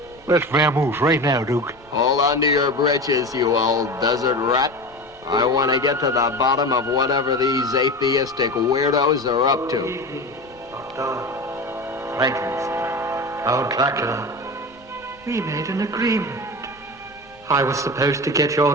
Let's vamoose right now, Duke. Hold on to your britches, you old desert rat. I want to get to the bottom of whatever these atheistic weirdos are up to. Dr. Frankenstein, Count Dracula, we made an agreement. I was supposed to get your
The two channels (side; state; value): left; noise; rumble, 29 dB below the sound